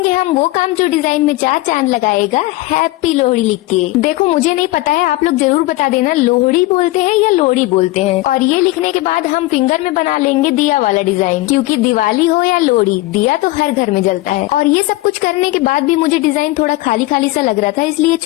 हम वो काम जो डिजाइन में 4 चांद लगाएगा, हैप्पी लोहड़ी लिख के। देखो मुझे नहीं पता है, आप लोग जरूर बता देना लोहड़ी बोलते हैं या लोहड़ी बोलते हैं। और ये लिखने के बाद हम फिंगर में बना लेंगे दिया वाला डिजाइन, क्योंकि दिवाली हो या लोहड़ी दिया तो हर घर में जलता है। और ये सब कुछ करने के बाद भी मुझे डिजाइन थोड़ा खाली खाली सा लग रहा था, इसलिए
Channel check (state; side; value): quieter; right; 19.1 dB